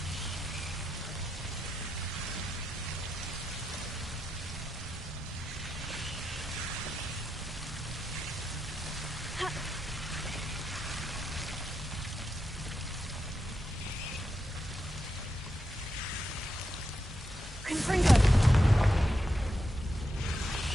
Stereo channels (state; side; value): normal; both; correlation 0.85